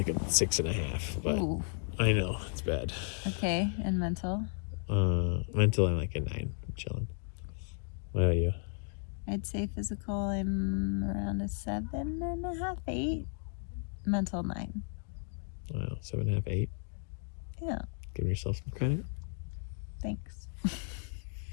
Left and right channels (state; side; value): silent; right; 55 dB below the other